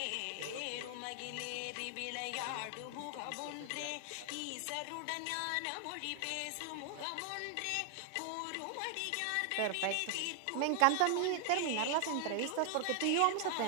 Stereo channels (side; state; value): both; different; correlation 0.00